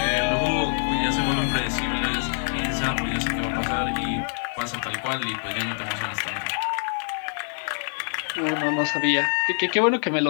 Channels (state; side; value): silent; right; 60 dB below the other